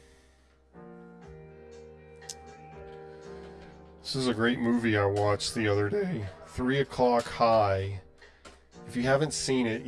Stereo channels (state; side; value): identical; both; correlation 1.00